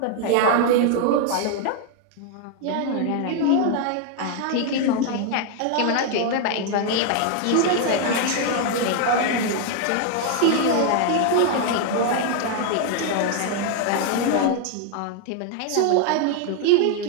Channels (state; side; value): different; both; correlation 0.00